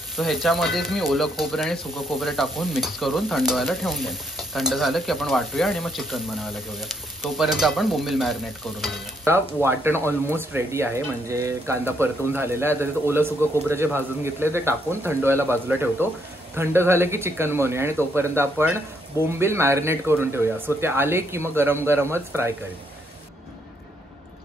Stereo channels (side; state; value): both; normal; correlation 0.73